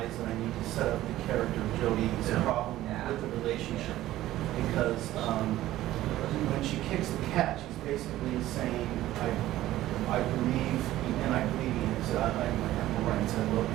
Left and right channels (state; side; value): quieter; left; 14.8 dB